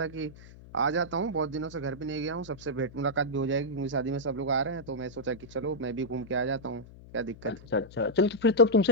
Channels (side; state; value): left; noise; hum, 19 dB below the sound